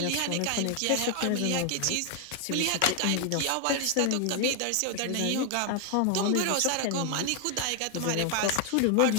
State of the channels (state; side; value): different; both; correlation 0.00